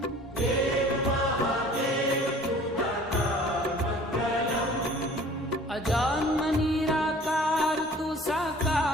अजन्म निराकार तू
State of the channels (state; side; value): normal; both; correlation 0.49